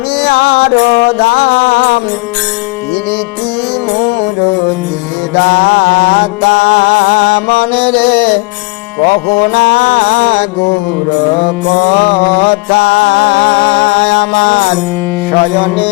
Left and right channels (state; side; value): quieter; right; 25.1 dB